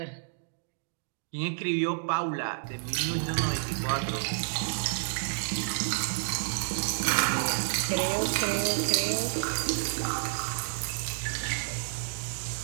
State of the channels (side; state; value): left; silent; digital silence